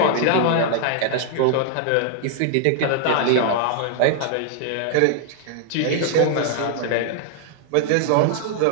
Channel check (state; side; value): different; both; correlation 0.00